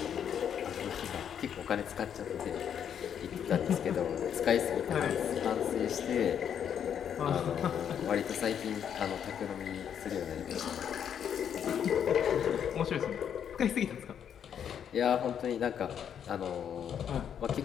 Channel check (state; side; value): quieter; right; 8.6 dB